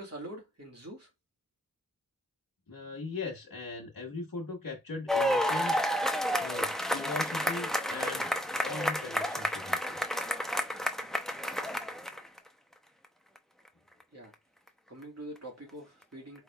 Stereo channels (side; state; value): both; normal; correlation 0.70